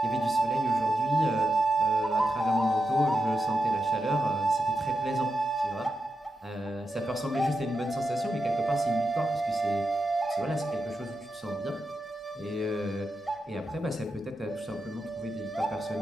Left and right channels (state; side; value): normal; both; correlation 0.87